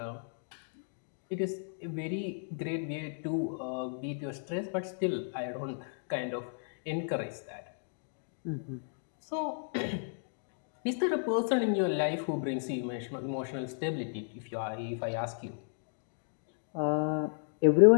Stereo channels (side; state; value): right; silent; digital silence